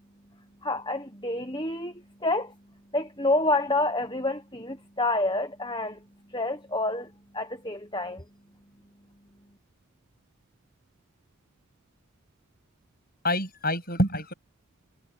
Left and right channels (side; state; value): both; normal; correlation 0.33